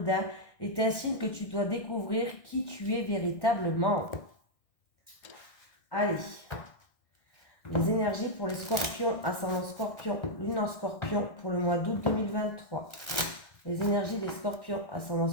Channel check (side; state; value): right; late; 1.6 ms